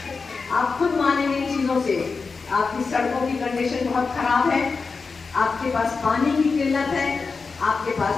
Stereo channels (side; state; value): right; quieter; 4.6 dB